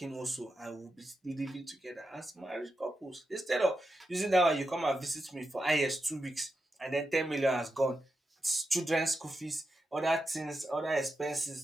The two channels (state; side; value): normal; both; correlation 0.88